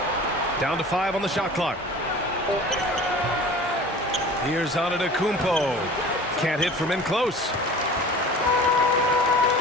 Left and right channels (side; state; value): both; normal; correlation 0.41